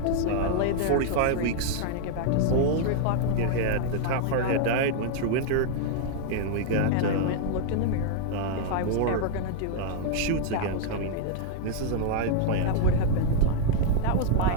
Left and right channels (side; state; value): both; different; correlation -0.01